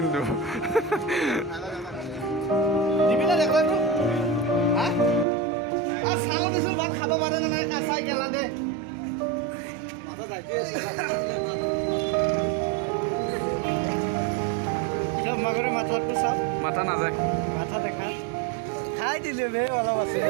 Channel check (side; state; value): left; drops out; at 5.2 s